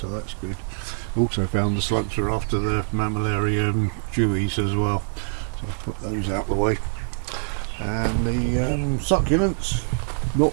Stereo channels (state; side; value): silent; left; 57 dB below the other